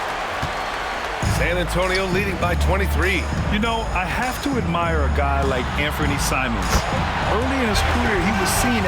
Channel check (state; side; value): identical; both; correlation 1.00